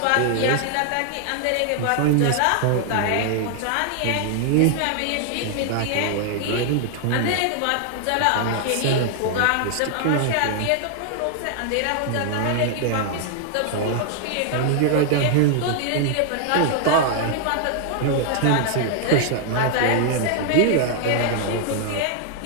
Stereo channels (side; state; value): both; different; correlation 0.00